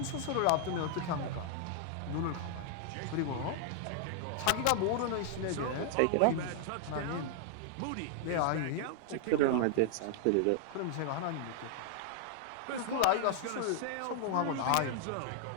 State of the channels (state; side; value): different; both; correlation -0.01